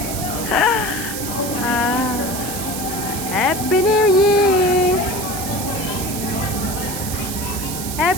Happy New Year.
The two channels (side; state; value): right; noise; hiss, 6 dB below the sound